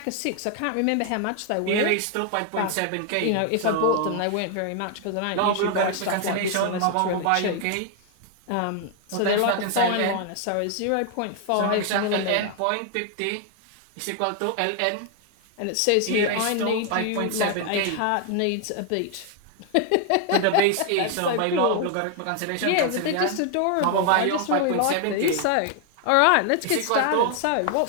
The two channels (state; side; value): different; both; correlation 0.00